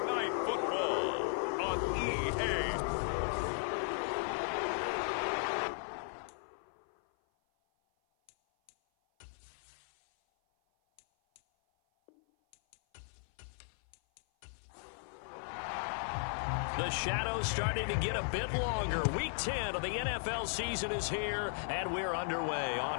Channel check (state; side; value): silent; right; 54 dB below the other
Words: Night Football on EA. The shadow's starting to get a bit longer. Week 10 of the NFL season is here, and we're underway